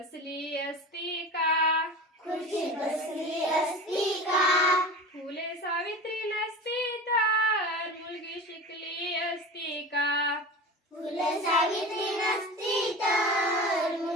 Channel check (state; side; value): normal; both; correlation 0.32